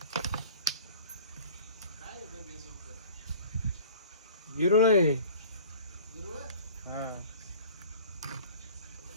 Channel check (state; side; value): inverted; both; correlation -0.46